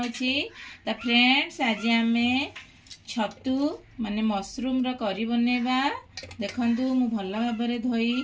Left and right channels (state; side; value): identical; both; correlation 1.00